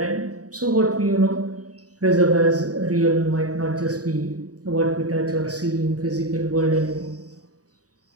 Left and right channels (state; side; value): late; left; 0.67 ms